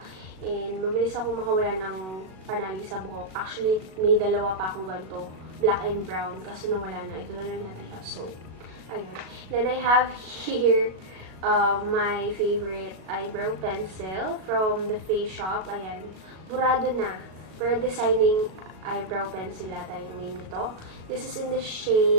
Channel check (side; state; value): left; late; 37 ms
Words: And mabilis ako makawala ng panali sa buhok. Actually, may dalawa pa akong ganito. Black and brown. Kaso nawala na. Ito na lang natin siya. So, ayun. Then I have here my favorite eyebrow pencil from the Face Shop. Ayan. Burado na. Pero designing eyebrow pencil ata yung name nito. This is in the